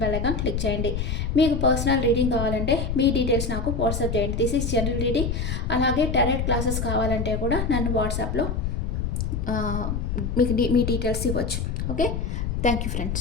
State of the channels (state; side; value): noise; left; rumble, 1 dB below the sound